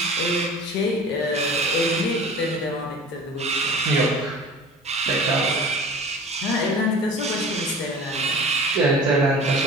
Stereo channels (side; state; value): both; normal; correlation 0.40